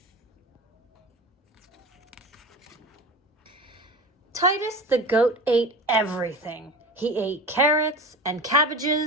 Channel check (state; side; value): normal; both; correlation 0.32